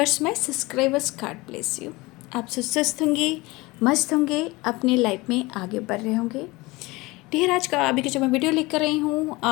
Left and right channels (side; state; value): right; quieter; 22.3 dB